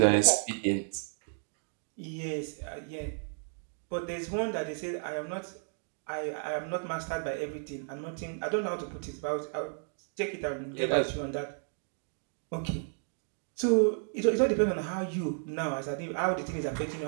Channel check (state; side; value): silent; left; 56 dB below the other